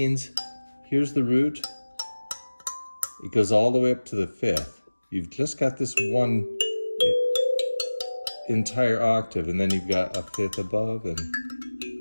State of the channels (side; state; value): both; inverted; correlation -1.00